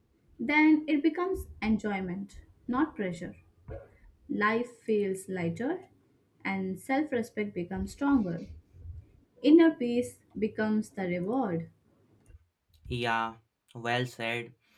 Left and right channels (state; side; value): identical; both; correlation 1.00